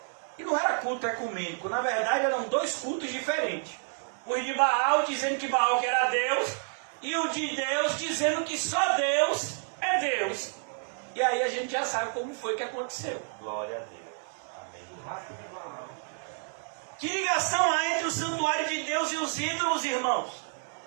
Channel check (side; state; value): left; silent; 58 dB below the other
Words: E não era culto ecumênico. Na verdade, eram dois cultos diferentes. O de Baal dizendo que Baal que era Deus, e o de Deus dizendo que só Deus é Deus. E aí a gente já sabe como foi que aconteceu. Glória a Deus. Amém. Que ligação há entre o santuário de Deus e os ídolos, irmãos?